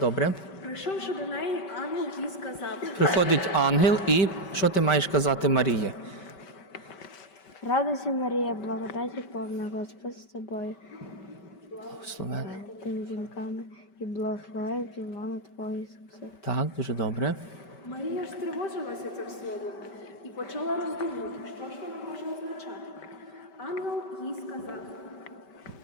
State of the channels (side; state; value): right; late; 5.2 ms